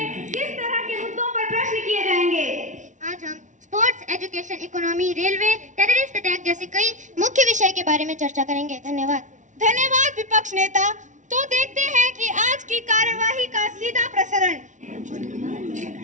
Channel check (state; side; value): late; left; 0.36 ms